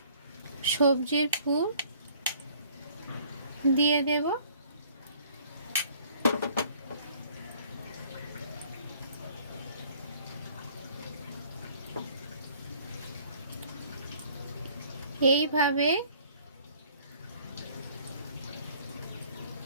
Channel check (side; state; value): both; inverted; correlation -0.56